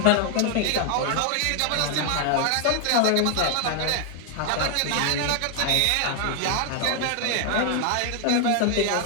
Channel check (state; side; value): different; both; correlation 0.00